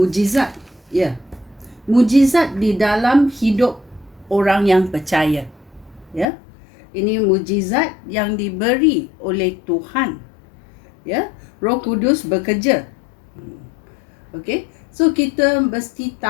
Ya. Mujizat di dalam hidup orang yang percaya. Ya. Ini mujizat yang diberi oleh Tuhan. Ya. Roh Kudus bekerja. Okey. So kita mesti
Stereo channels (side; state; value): right; drops out; at 6.2 s